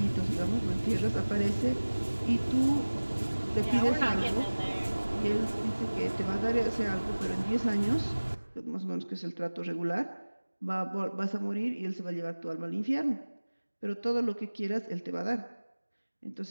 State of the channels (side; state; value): both; inverted; correlation -1.00